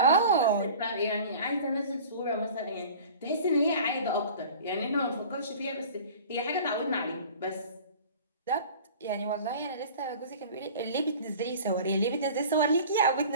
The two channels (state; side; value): inverted; both; correlation -0.42